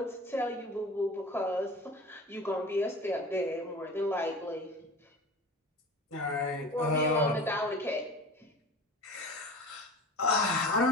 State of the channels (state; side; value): normal; both; correlation 0.36